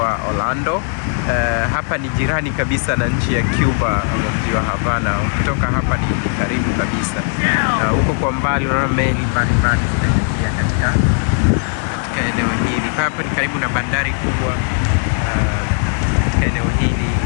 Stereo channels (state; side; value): silent; right; 55 dB below the other